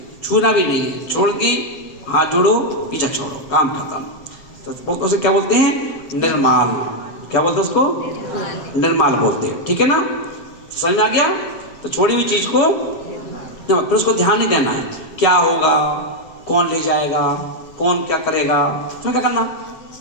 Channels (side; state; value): right; late; 7.0 ms